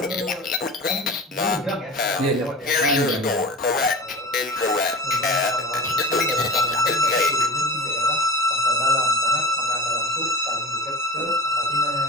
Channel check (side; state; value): both; normal; correlation 0.33